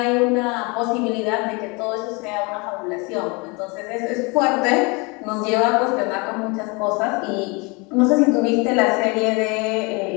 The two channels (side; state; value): right; quieter; 28.9 dB